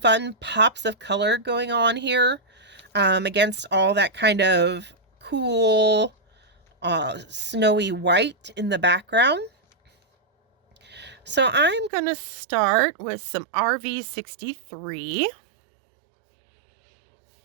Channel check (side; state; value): left; drops out; at 11.9 s